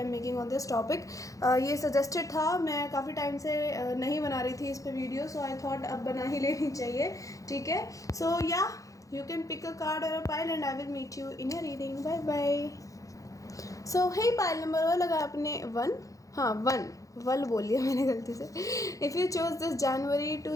am making on this topic. ये सजेस्टेड था, मैं काफ़ी टाइम से नहीं बना रही थी इस पे वीडियो, सो आई थॉट अब बना ही लेनी चाहिए। ठीक है, सो या you can pick a card और a pile and I will meet you in your reading. Bye bye. So hey, pile number one लगा आपने 1, हाँ 1 वल बोलिए मैंने गलती से। If you choose this January to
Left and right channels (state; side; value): late; right; 0.16 ms